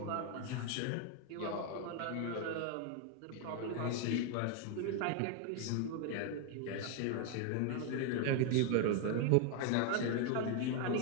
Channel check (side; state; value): both; different; correlation 0.01